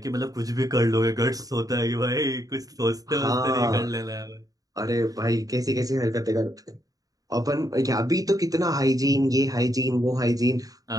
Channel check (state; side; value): late; left; 0.18 ms